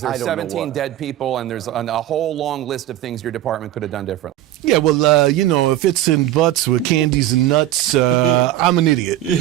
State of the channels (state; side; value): quieter; left; 13.4 dB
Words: There's 17 dead people, and there's a whole long list of things your department could have done differently. Yeah, well, if it's in butts with candies and nuts, I'm an idiot.